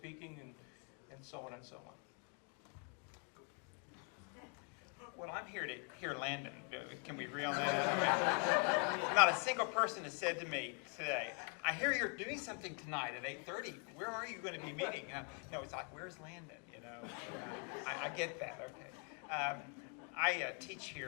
and so on and so on? Well, I'm here to hear Landon. Can we agree on that? Not a single person has said to me today, I hear you're doing something tonight at 8:30. Where are you going to be meeting? No, it's like, where's Landon? I get that. Okay. I teach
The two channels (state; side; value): quieter; right; 38.6 dB